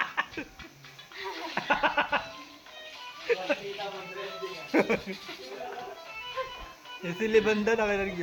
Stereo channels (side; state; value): both; identical; correlation 1.00